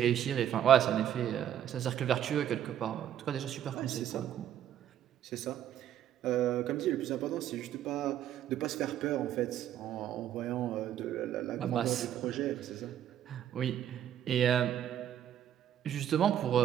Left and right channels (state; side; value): quieter; left; 10.7 dB